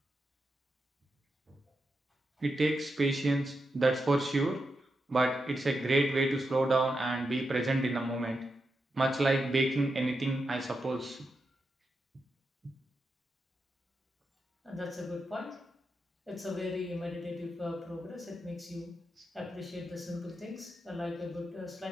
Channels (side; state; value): both; normal; correlation 0.86